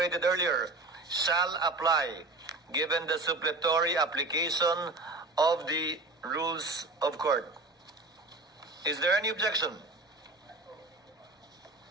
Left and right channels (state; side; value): quieter; left; 3.2 dB